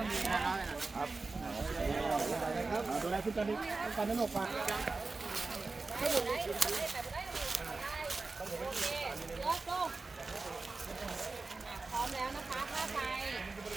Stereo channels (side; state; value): left; quieter; 3.7 dB